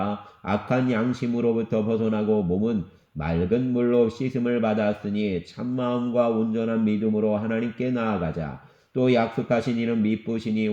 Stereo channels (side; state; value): both; identical; correlation 1.00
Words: 악한 양심으로부터 벗어나고 몸은 맑은 물로 씻음을 받았으니 참마음과 온전한 믿음으로 하나님께 나아가자. 또 약속하신 이는 미쁘시니